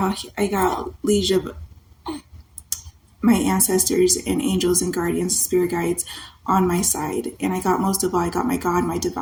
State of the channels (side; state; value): both; identical; correlation 1.00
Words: liege of my ancestors and angels and guardians, spirit guides on my side. And most of all, I got my God, my